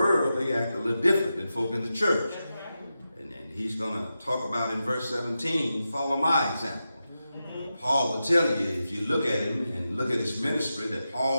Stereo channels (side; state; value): both; inverted; correlation -0.90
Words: they act a little different than folk in the church. And he's going to talk about in verse 17, follow my example. Paul will tell you, if you look at him and look at his ministry, that